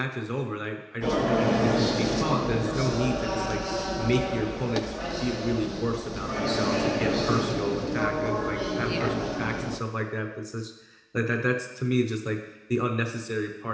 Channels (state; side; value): identical; both; correlation 1.00